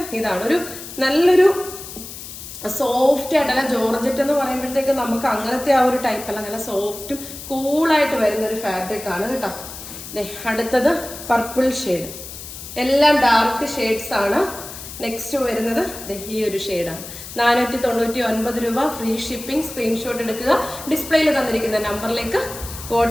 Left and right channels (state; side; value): noise; left; hiss, 12 dB below the sound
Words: ഇതാണ് ഒരു നല്ലൊരു സോഫ്റ്റ് ആയിട്ടല്ല, ജോർജറ്റ് എന്ന് പറയുമ്പോഴത്തേക്ക് നമുക്ക് അങ്ങനത്തെ ആ ഒരു ടൈപ്പ് അല്ല, നല്ല സോഫ്റ്റും കൂളായിട്ട് വരുന്ന ഒരു ഫാബ്രിക് ആണ് കേട്ടോ. അടുത്തത് പർപ്പിൾ ഷെയ്ഡ്, എല്ലാം ഡാർക്ക് ഷെയ്ഡ്സ് ആണ്. നെക്സ്റ്റ് വരുന്നത് ഈ ഒരു ഷെയ്ഡാണ്. 499 രൂപ, ഫ്രീ ഷിപ്പിംഗ്. സ്ക്രീൻഷോട്ട് എടുക്കുക, ഡിസ്പ്ലേയിൽ തന്നിരിക്കുന്ന നമ്പറിലേക്ക്